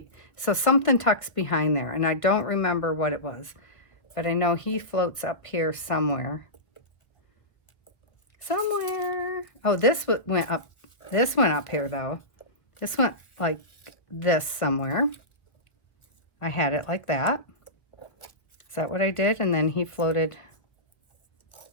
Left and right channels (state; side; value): late; right; 1.1 ms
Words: something tucks behind there, and I don't remember what it was. But I know he floats up here somewhere. Somewhere. Oh, this went up. This went up here, though. This went like this somewhere. I had it like that. Is that what I did? And then he floated.